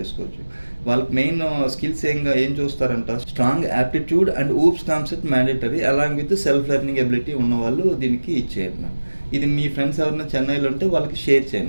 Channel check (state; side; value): inverted; both; correlation -1.00